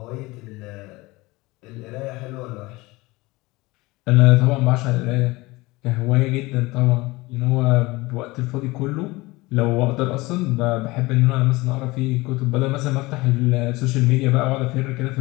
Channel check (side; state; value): right; quieter; 21.8 dB